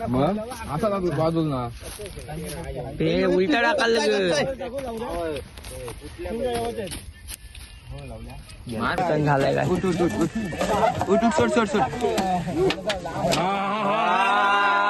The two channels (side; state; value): both; identical; correlation 1.00